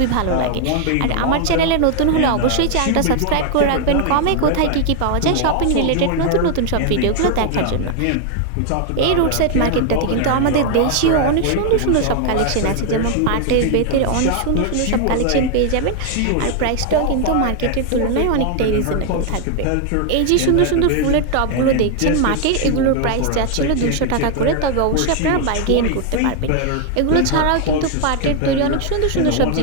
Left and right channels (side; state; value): both; different; correlation 0.00